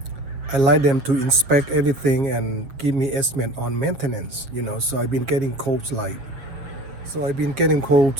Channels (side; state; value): left; late; 7.3 ms